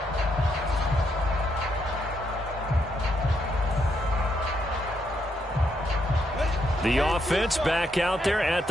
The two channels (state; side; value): normal; both; correlation 0.77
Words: The offense back out there at